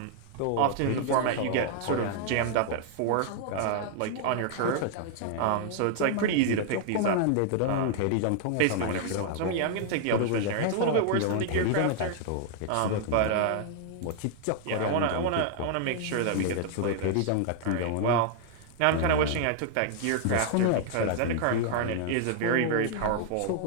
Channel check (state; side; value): different; both; correlation 0.00